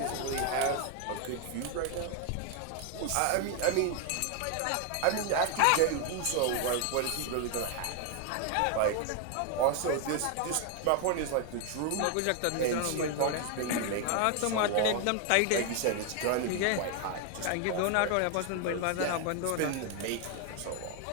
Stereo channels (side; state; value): both; different; correlation 0.01